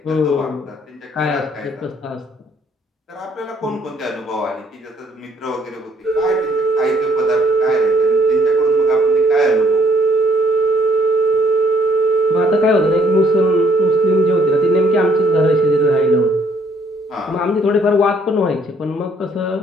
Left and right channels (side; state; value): both; normal; correlation 0.65